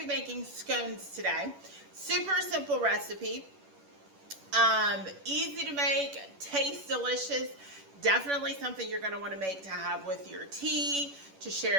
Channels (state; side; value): late; left; 11 ms